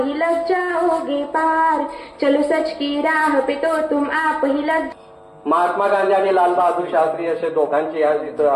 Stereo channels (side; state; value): both; identical; correlation 1.00